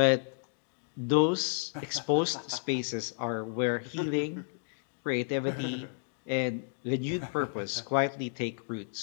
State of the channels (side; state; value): right; silent; digital silence